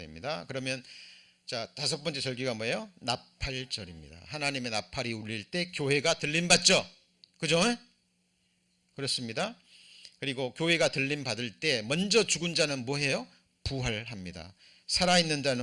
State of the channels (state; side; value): identical; both; correlation 1.00